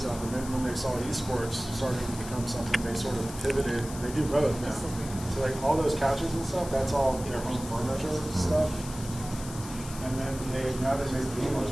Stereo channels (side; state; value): left; noise; hiss, 13 dB below the sound